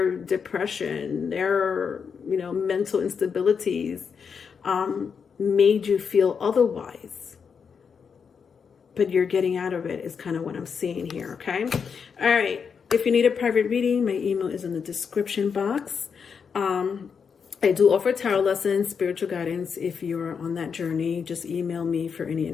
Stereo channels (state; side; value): quieter; right; 6.3 dB